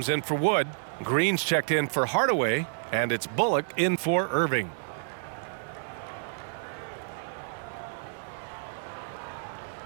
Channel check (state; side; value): silent; left; 58 dB below the other